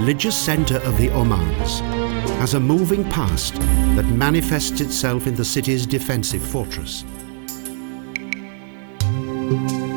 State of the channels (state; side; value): silent; left; 66 dB below the other